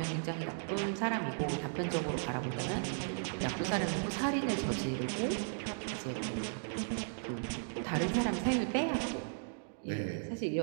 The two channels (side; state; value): left; silent; digital silence